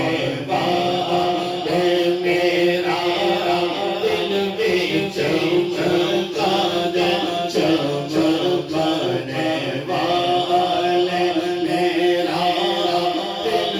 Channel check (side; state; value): both; identical; correlation 1.00